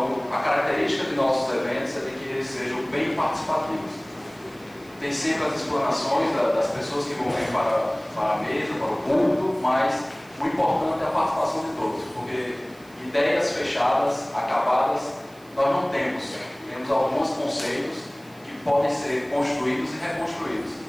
a característica de nossos eventos é de que eles sejam bem participativos. Tem sempre as explanações das pessoas que vão vir para a mesa, para o público, mas o importante é a participação de todos, porque ideias fechadas, acabadas, nós não temos. Temos alguns conceitos que podem ser construídos e reconstruídos.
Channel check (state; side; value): noise; right; hiss, 27 dB below the sound